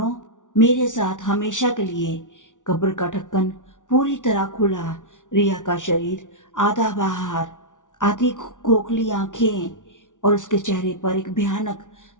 मेरे साथ हमेशा के लिए। कब्र का ढक्कन पूरी तरह खुला, रिया का शरीर आधा बाहर, आधी खोखली आंखें, और उसके चेहरे पर एक भयानक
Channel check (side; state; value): right; late; 0.87 ms